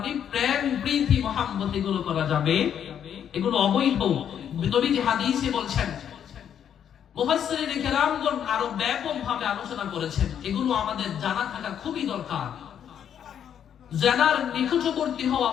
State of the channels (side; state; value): right; quieter; 9.0 dB